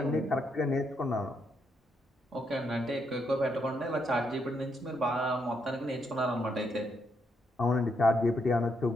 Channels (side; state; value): both; normal; correlation 0.77